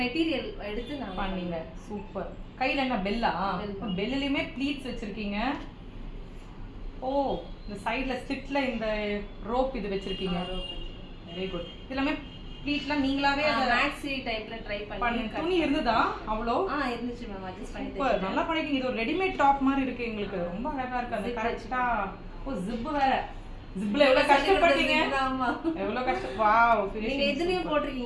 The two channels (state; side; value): identical; both; correlation 1.00